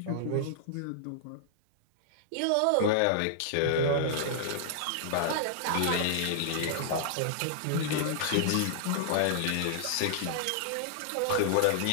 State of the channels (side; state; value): both; different; correlation -0.01